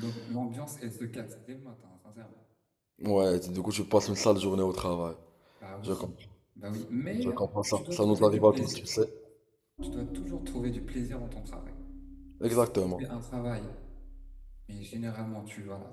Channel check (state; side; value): identical; both; correlation 1.00